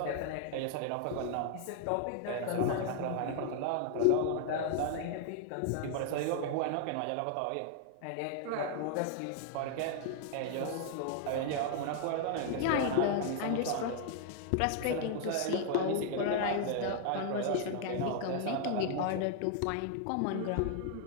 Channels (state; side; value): different; both; correlation 0.00